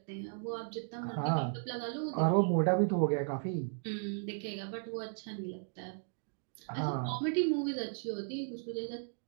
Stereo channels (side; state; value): left; silent; digital silence